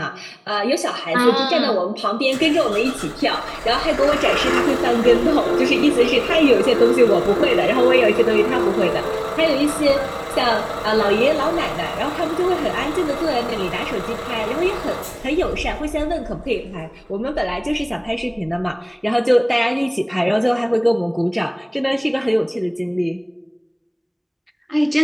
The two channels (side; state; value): both; identical; correlation 1.00